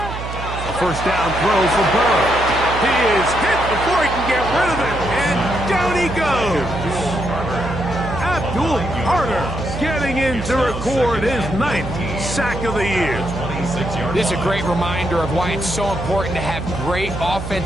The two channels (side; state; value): right; noise; hum, 8 dB below the sound